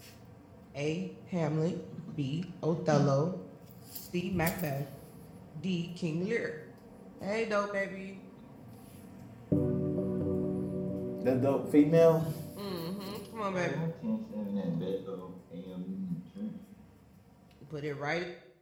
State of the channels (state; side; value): identical; both; correlation 1.00